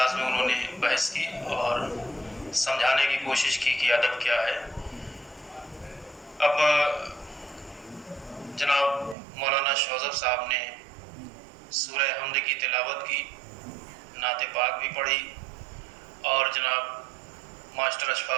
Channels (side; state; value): left; drops out; at 9.2 s